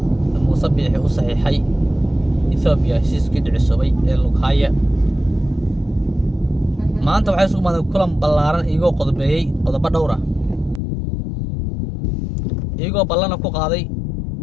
Muuse Biixi u saxiixay Ethiopia heshiiskii dhicisoobay ee Lughaya maanta waxay isugu maadeen kulan ballaaran iyagoo qodobeeyay qodobo dhowr ah iyagoo ballana ku qaaday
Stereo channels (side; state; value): right; drops out; at 10.8 s